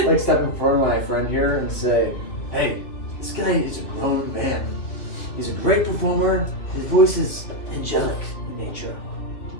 like step in front of my friend here and say, hey, this guy is a grown man. He's a great performer. His voice is angelic in nature.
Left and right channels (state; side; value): late; right; 2.8 ms